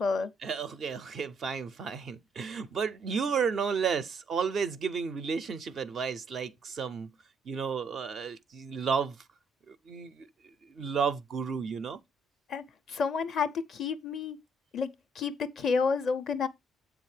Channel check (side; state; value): both; normal; correlation 0.69